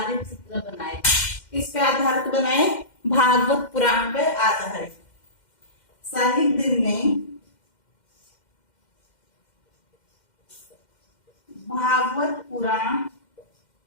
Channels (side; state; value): right; late; 2.1 ms